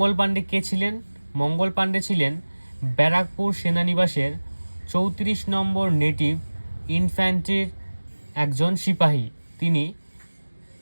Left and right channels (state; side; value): inverted; both; correlation -1.00